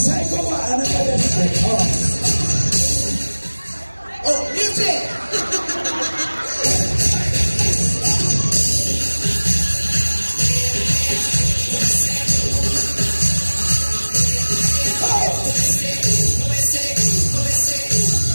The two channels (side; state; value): both; inverted; correlation -1.00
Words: ikaw ba? Ano ka yan? Oh. Oh, music!